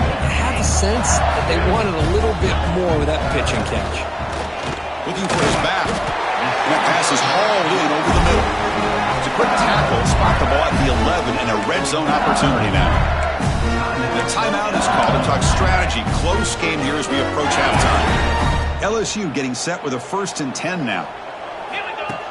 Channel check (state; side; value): identical; both; correlation 1.00